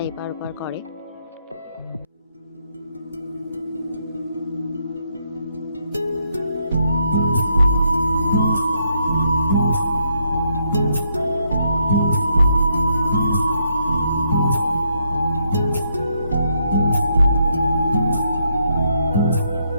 এপার ওপার করে।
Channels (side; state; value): both; inverted; correlation -0.76